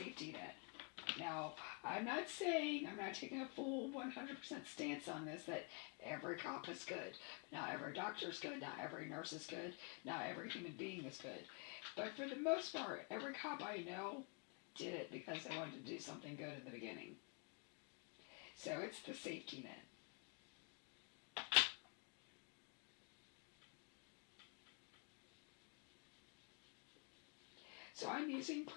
net. Now, I'm not taking a full 100% stance on this, that every cop is good. Not every doctor is good. Not every nurse is good. Not every human being is good. But for the most part, every cop I know did it because they wanted to do something good in the beginning. So it's the safety net. So I'm using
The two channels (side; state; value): right; quieter; 34.0 dB